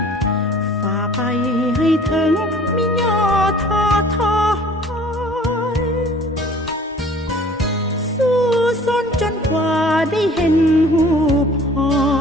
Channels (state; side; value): normal; both; correlation 0.50